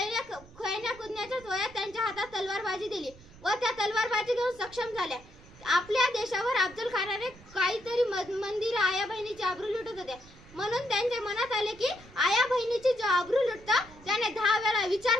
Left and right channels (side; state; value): right; noise; rumble, 22 dB below the sound